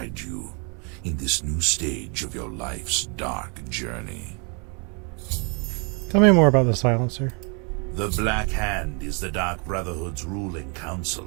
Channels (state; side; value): quieter; left; 35.4 dB